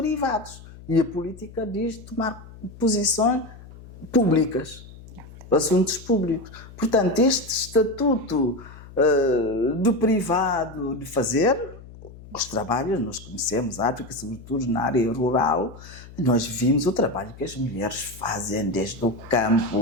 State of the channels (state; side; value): noise; left; hum, 18 dB below the sound